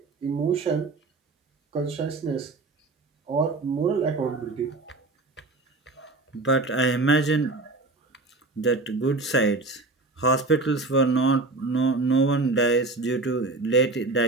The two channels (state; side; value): quieter; left; 3.3 dB